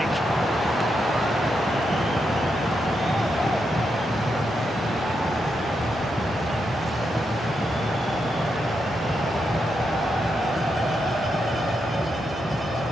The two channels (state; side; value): normal; both; correlation 0.83